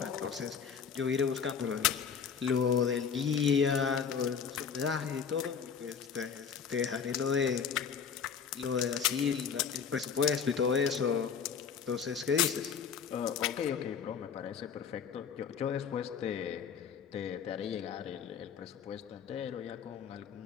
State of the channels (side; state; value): right; quieter; 6.8 dB